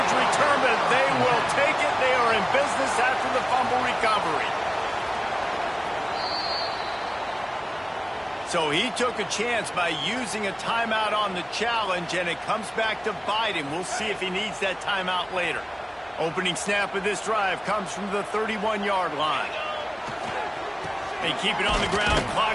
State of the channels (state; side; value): identical; both; correlation 1.00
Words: return, but they will take it. They are in business after the fumble recovery. So he took a chance by using a timeout on the challenge, and it comes back to bite him. We'll see if he needs that timeout later. Opening snap of this drive comes from the 31-yard line. They keep it on the ground.